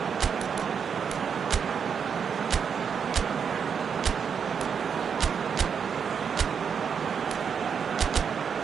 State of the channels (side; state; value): left; quieter; 6.9 dB